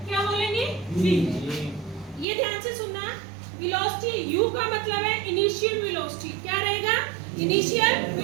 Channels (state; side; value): drops out; left; at 2.2 s